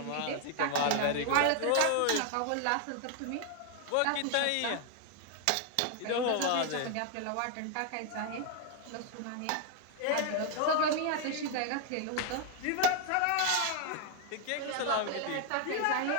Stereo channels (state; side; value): different; both; correlation 0.00